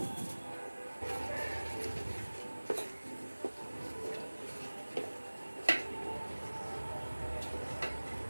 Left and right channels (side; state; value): both; inverted; correlation -1.00